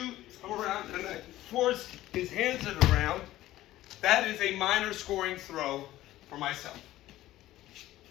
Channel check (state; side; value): quieter; right; 15.2 dB